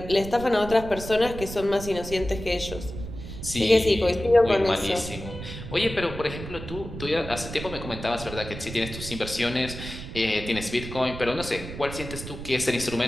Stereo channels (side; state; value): right; noise; rumble, 10 dB below the sound